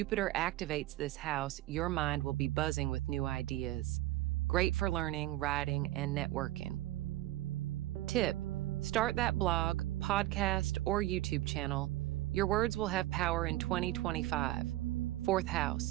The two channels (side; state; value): left; quieter; 16.4 dB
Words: activates this house, your mind will be buzzing with new ideas. Great for learning, writing, and networking. Tip: start that blog, podcast, or YouTube channel. Your words will have power in 2025. Fourth